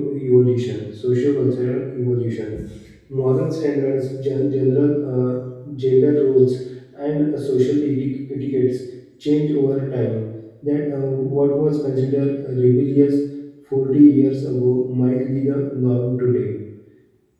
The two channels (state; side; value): identical; both; correlation 1.00